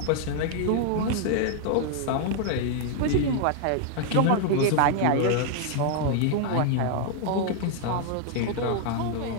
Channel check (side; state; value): both; different; correlation 0.00